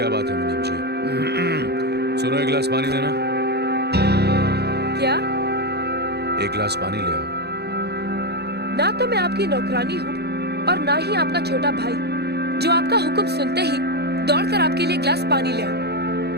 बात है मुनीम जी? सुनो, 1 गिलास पानी देना। क्या? 1 गिलास पानी ले आओ। ना तो मैं आपकी नौकरानी हूँ और ना ही आपका छोटा भाई जो आपका हुक्म सुनते ही दौड़कर आपके लिए गिलास पानी ले आओ।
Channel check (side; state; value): left; late; 0.48 ms